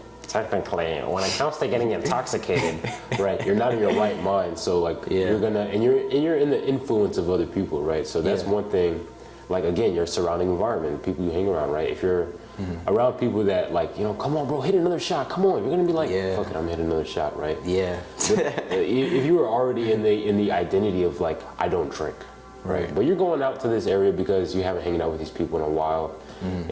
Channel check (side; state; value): both; identical; correlation 1.00